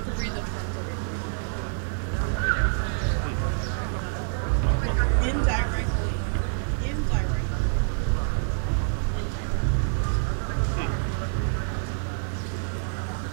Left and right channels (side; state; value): left; silent; 60 dB below the other